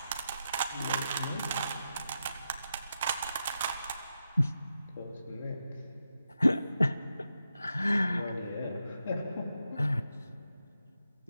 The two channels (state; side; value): inverted; both; correlation -0.86